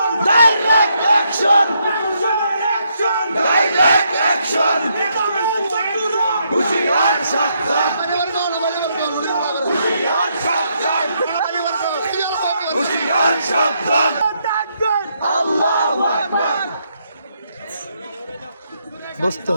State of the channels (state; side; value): inverted; both; correlation -0.76